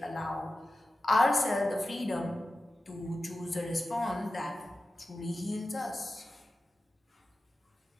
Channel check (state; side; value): normal; both; correlation 0.93